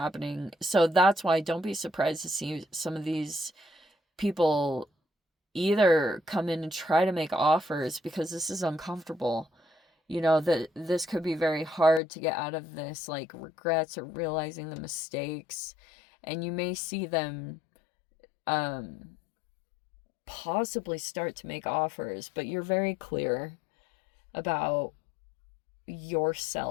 So that's why don't be surprised to see some of these people either come in and try to make offers, because this is uncomfortable. You know, that this could be very hard to get out of this, like regrets or realizing the mistakes. And you may see them possibly start to make offers, but you're very clear about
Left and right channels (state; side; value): drops out; right; at 12.0 s